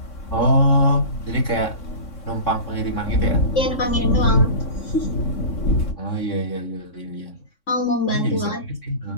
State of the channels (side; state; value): right; late; 3.6 ms